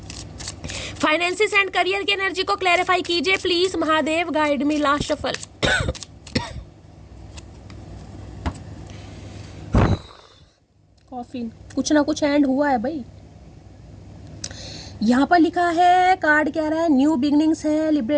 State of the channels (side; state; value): both; identical; correlation 1.00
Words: Finances and career की एनर्जी को क्लैरिफाई कीजिए please Mahadev guide me. Last shuffle. Coffee, कुछ ना कुछ एंड हुआ है भाई। यहाँ पर लिखा है, कार्ड कह रहा है न्यू बिगनिंग्स है,